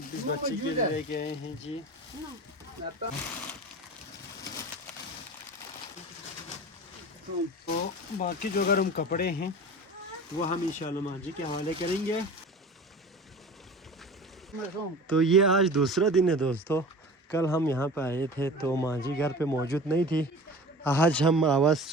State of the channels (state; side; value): normal; both; correlation 0.37